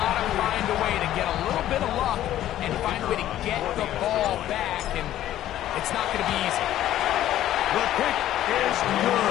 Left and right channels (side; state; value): right; quieter; 12.8 dB